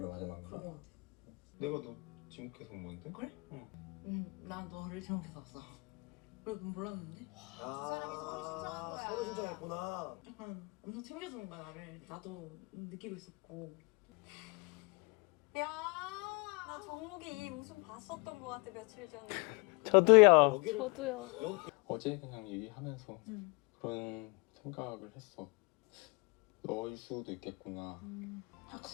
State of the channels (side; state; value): right; quieter; 29.3 dB